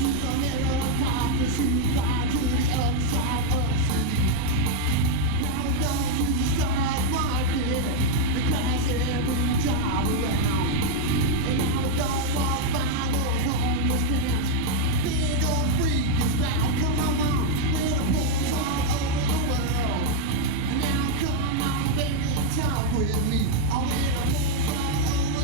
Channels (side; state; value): both; different; correlation 0.00